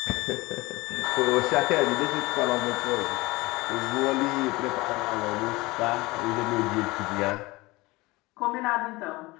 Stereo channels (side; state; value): right; quieter; 21.9 dB